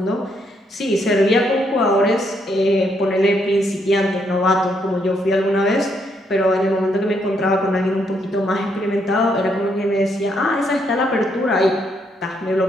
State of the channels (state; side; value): normal; both; correlation 0.74